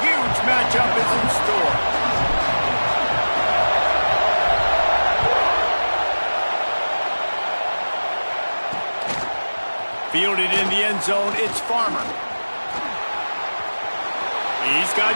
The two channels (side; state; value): both; inverted; correlation -1.00